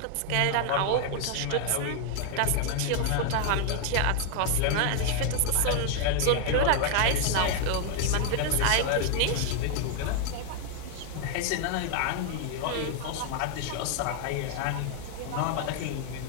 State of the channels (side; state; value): both; different; correlation 0.01